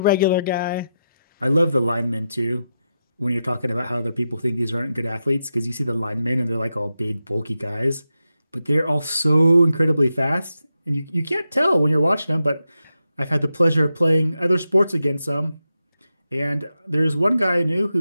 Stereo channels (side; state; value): both; inverted; correlation -0.88